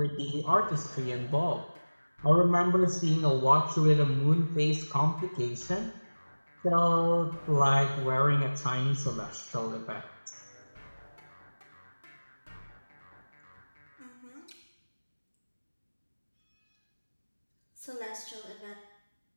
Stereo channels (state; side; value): inverted; both; correlation -1.00